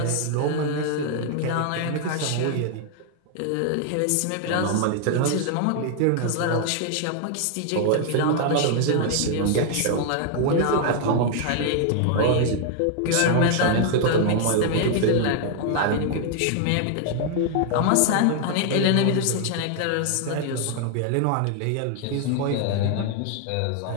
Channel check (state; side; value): different; both; correlation 0.00